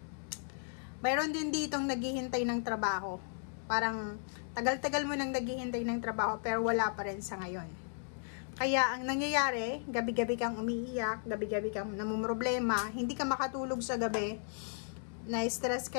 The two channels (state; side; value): silent; right; digital silence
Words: Mayroon din ditong naghihintay ng trabaho. Parang tagal-tagal mo nang naghihintay ng trabaho pero wala pa rin sa ngayon. Kaya ang nangyayari, gabi-gabi kang umiiyak, gabi-gabi kang namumroblema, hindi ka makatulog sa gabi, na-stress